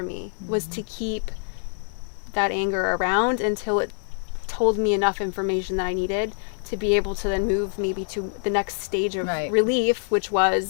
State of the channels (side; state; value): right; silent; 62 dB below the other